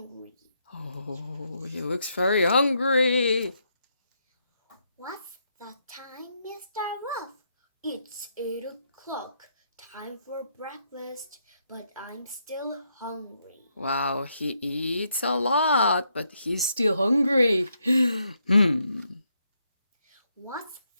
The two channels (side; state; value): both; inverted; correlation -0.78